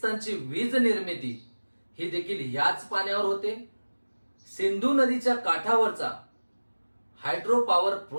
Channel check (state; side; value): inverted; both; correlation -1.00